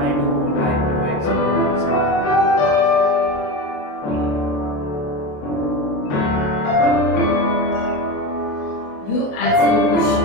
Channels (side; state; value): right; late; 27 ms